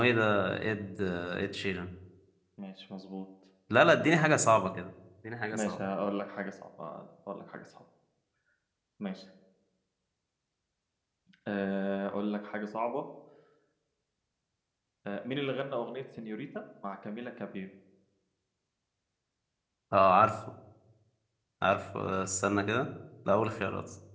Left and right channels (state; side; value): identical; both; correlation 1.00